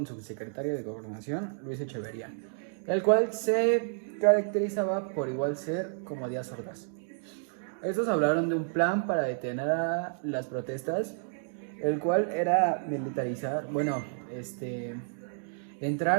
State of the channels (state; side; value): silent; left; digital silence